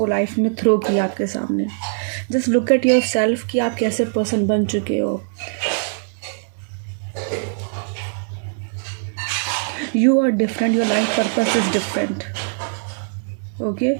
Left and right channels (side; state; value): left; silent; 65 dB below the other